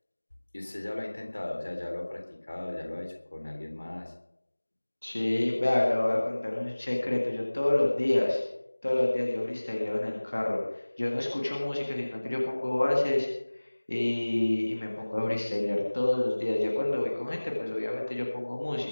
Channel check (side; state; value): both; inverted; correlation -1.00